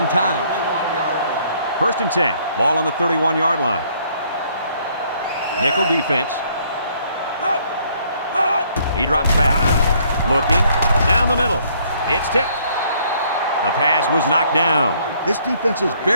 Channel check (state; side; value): inverted; both; correlation -0.64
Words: times. 1st and 10. Ball on the 31-yard line. Nickel defense. He drops back. Looking. Down the middle. It's tipped. The pass was knocked down. This defense is